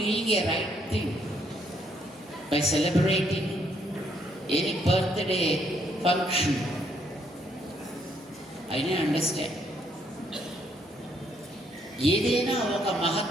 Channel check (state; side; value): normal; both; correlation 0.71